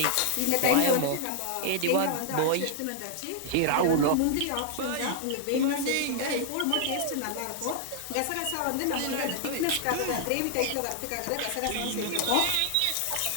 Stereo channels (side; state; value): both; different; correlation -0.01